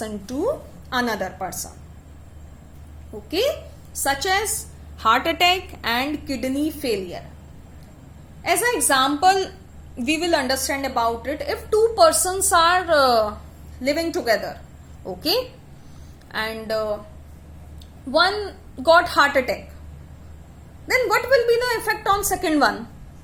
to another person. Okay, such as heart attack and kidney failure. As an example, we will understand about it. If two persons are living together, okay, and one got heart attack, then what will be the effect on second one?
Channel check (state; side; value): identical; both; correlation 1.00